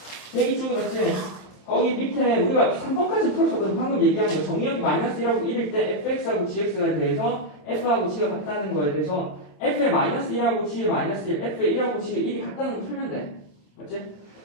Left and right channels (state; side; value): late; right; 27 ms